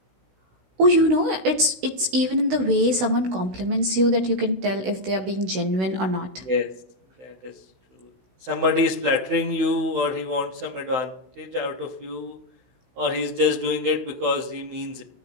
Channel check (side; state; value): left; late; 16 ms